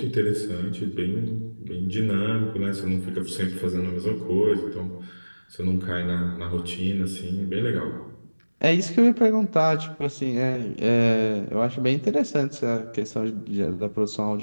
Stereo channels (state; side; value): inverted; both; correlation -1.00